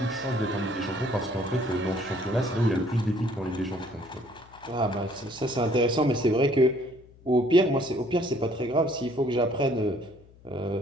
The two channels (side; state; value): left; noise; hum, 25 dB below the sound